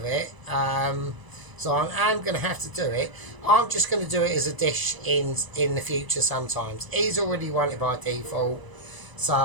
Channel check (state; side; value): late; left; 1.0 ms